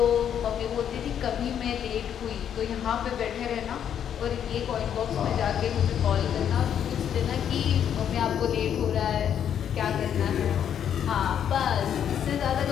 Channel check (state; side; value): quieter; right; 9.1 dB